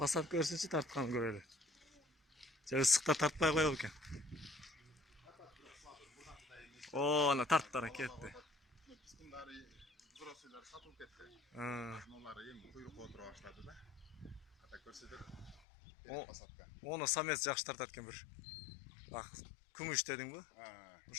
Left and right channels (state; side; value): drops out; right; at 15.7 s